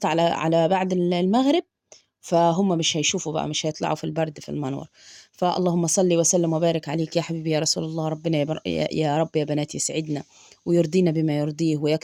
على بعد المغرب، فهم مش هيشوفوا بقى، مش هيطلعوا في البرد في المنور. فاللهم صل وسلم وبارك عليك يا حبيبي يا رسول الله. ربنا يا رب يا بنات يسعدنا ويرضينا بما يرضيه،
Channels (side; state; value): both; identical; correlation 1.00